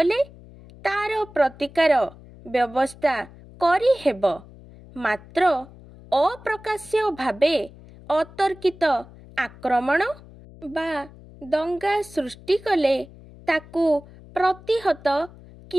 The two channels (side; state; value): left; noise; hum, 21 dB below the sound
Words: तार प्रतिकार व्यवस्था करी हेब। मात्र अप्रकाश्य भावे अतर्कित आक्रमण बा दंगा सृष्टि कले ताकू प्रतिहत